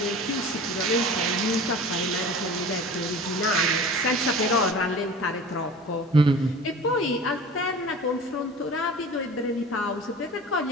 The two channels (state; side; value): normal; both; correlation 0.39